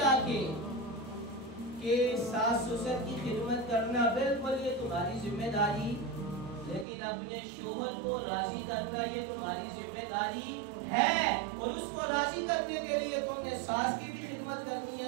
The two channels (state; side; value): drops out; left; at 6.9 s